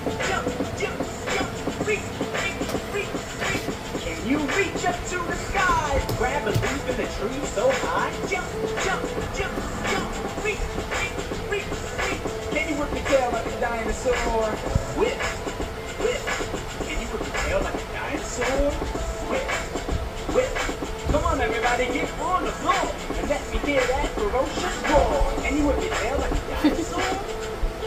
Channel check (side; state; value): both; identical; correlation 1.00